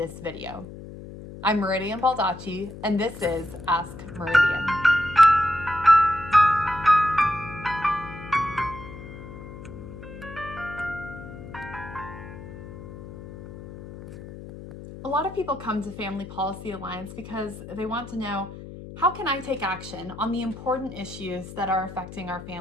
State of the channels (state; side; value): noise; left; hum, 13 dB below the sound